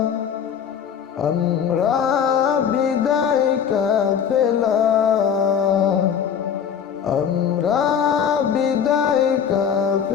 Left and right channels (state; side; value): quieter; right; 7.8 dB